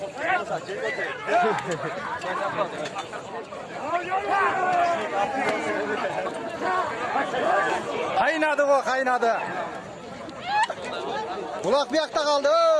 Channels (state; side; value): identical; both; correlation 1.00